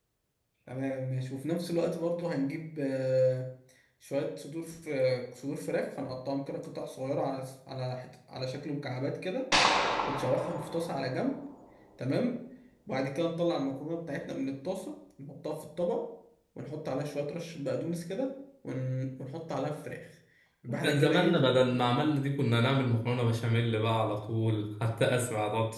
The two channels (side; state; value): both; identical; correlation 1.00